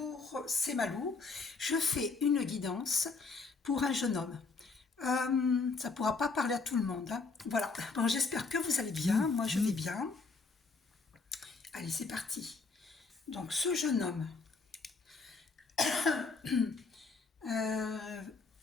c'est Malou. Je fais une guidance pour un jeune homme. Ça pourra pas parler à tout le monde, hein. Voilà. Bon, j'espère que vous allez bien. Moi, je vais bien. Allez, c'est parti. Donc, ce jeune homme. euh,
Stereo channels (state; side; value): quieter; right; 4.3 dB